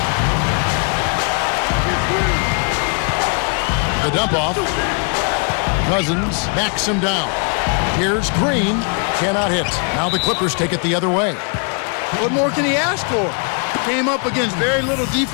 The dump off. Cousins backs him down. Here's Green. Cannot hit. Now the Clippers take it the other way. What more can he ask for? Came up against very little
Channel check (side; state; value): right; quieter; 39.2 dB